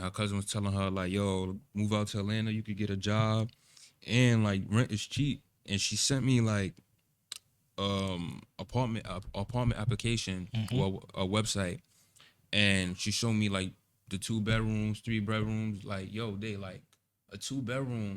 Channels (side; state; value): both; identical; correlation 1.00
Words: her cousin was telling her like, yo, move out to Atlanta. You could get a job, and like rent is cheap." And she sent me like apartment application Mm-hmm. or a website, and she showed me like the 2 bedrooms, 3 bedrooms. Like, yo, they like a 2